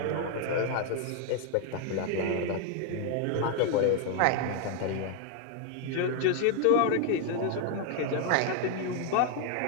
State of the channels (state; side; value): different; both; correlation 0.00